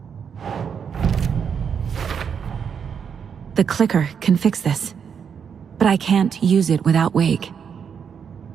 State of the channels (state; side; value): quieter; left; 7.1 dB